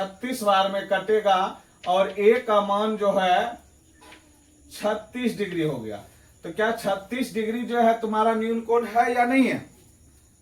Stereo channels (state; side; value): identical; both; correlation 1.00